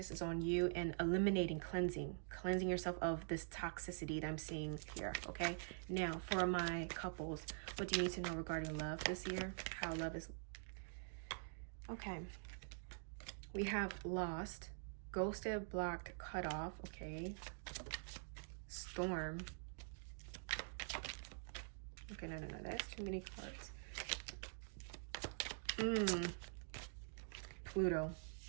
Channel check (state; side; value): silent; left; digital silence